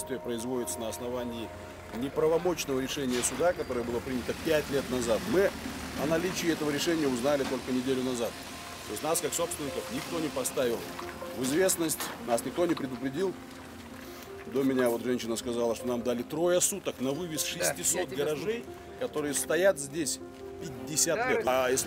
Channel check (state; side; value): identical; both; correlation 1.00